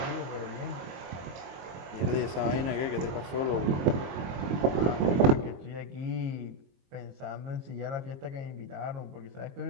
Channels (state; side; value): late; left; 22 ms